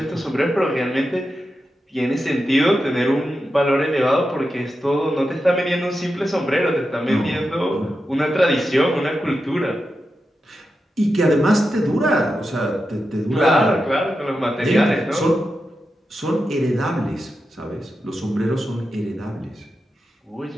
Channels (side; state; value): both; normal; correlation 0.89